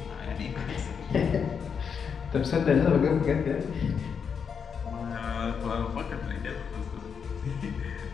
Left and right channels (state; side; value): quieter; right; 6.6 dB